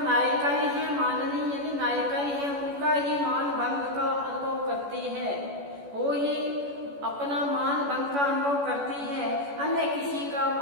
नायिकाएं हैं, माननीय यानी नायिकाएं हैं, उनका ही मान भंग का अनुभव करती है। वो ही अपना मान भंग का अनुभव करती है। अन्य किसी का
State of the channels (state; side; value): late; left; 14 ms